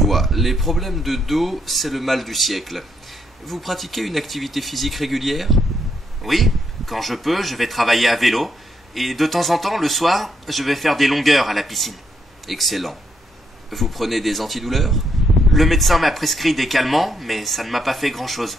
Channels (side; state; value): both; normal; correlation 0.76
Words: Les problèmes de dos, c'est le mal du siècle. Vous pratiquez une activité physique régulière? Oui, quand je peux, je vais travailler à vélo. Et de temps en temps, le soir, je vais faire des longueurs à la piscine. Excellent. Vous prenez des antidouleurs? Le médecin m'a prescrit des calmants, mais ça ne m'a pas fait grand-chose.